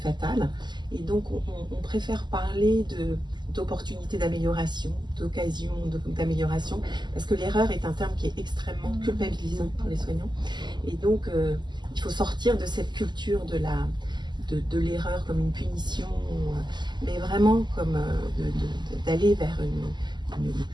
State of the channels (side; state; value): left; late; 0.21 ms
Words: Et donc, on préfère parler d'opportunités d'amélioration, d'occasions d'amélioration, parce que l'erreur est un terme qui est extrêmement culpabilisant pour les soignants. Et donc, il faut sortir de cette culture de l'erreur comme une punition, mais vraiment comme d'aller vers une